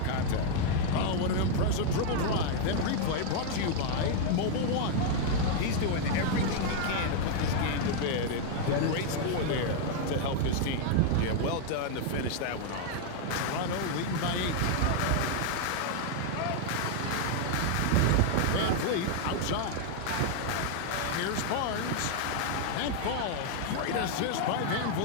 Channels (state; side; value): different; both; correlation 0.00